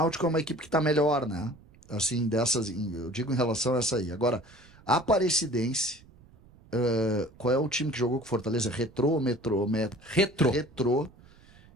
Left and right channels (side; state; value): right; noise; rumble, 25 dB below the sound